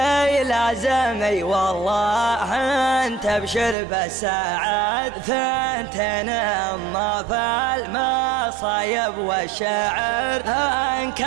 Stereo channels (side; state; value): left; drops out; at 3.8 s